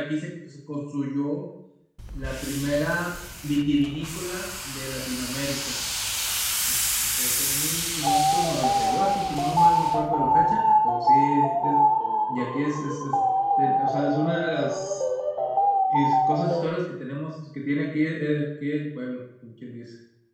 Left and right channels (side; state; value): both; identical; correlation 1.00